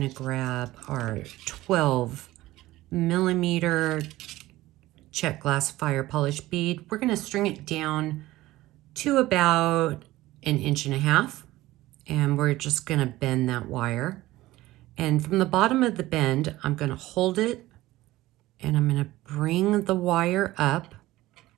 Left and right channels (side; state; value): left; quieter; 17.2 dB